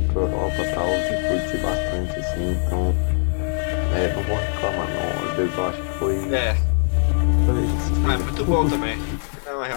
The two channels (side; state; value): right; silent; digital silence